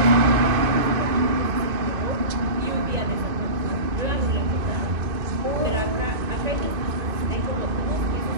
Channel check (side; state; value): left; late; 2.5 ms